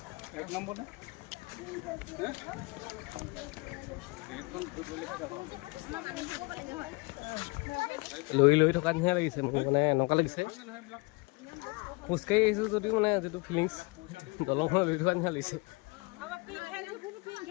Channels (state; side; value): quieter; right; 28.0 dB